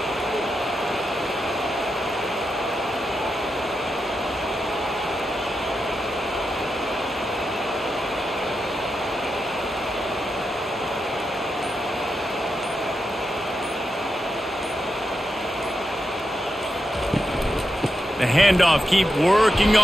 The handoff, keep working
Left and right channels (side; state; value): both; normal; correlation 0.87